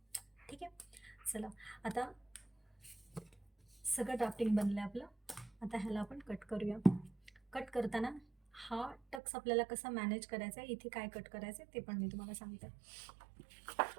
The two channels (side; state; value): left; drops out; at 9.2 s